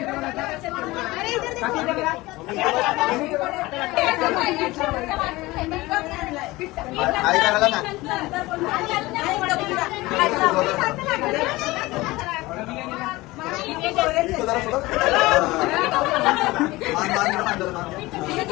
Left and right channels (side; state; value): right; quieter; 20.3 dB